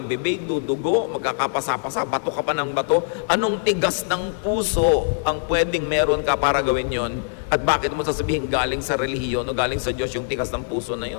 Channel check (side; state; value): right; silent; digital silence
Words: bibig, dudugo, magkakapasa-pasa, bato ka pa ng bato. Anong tigas ng puso ang pwedeng meron ka para gawin yon? At bakit mo sasabihin galing sa relihiyon o galing sa Diyos yung tigas ng puso na